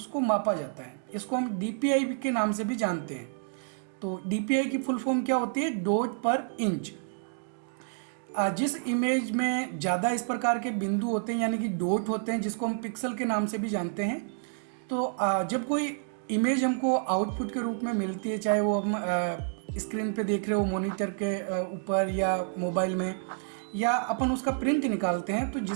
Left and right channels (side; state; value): left; silent; digital silence